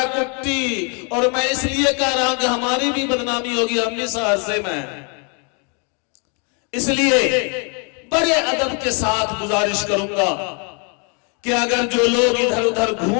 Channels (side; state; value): right; quieter; 37.0 dB